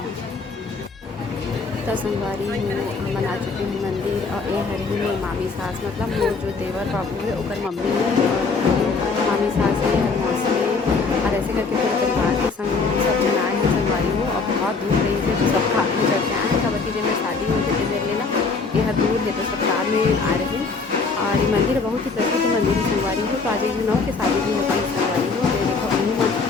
तो संगवारी हो हम आ चुके हैं मंदिर और ये हर ही मोर मामी सास मतलब मोर जो देवर बाबू है ओकर मम्मी है और मामी सास है हर मौसी है और ऐसे करके पूरे परिवार के संग सब जन आए हैं संगवारी हो और बहुत दूर रही है तो सब कार में चढ़ के आए हैं। कबड्डी जब में शादी हुई थी मेरे लेना ये हर दूर है तो सब कार में आ रहे हैं और ये मंदिर बहुत ही प्रसिद्ध मंदिर है संगवारी हो। तो आज एक नौ की शादी भी होती है संगवारी हो तो देखो उन्हीं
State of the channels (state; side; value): quieter; right; 4.5 dB